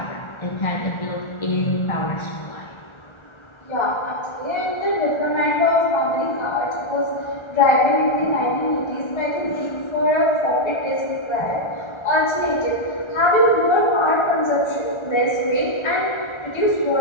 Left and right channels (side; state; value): right; late; 1.3 ms